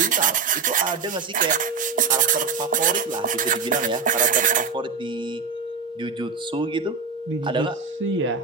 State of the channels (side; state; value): left; quieter; 5.2 dB